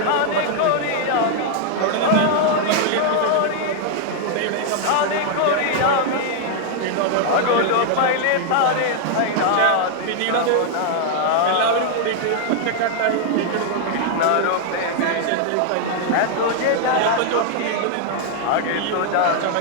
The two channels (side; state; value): both; different; correlation 0.00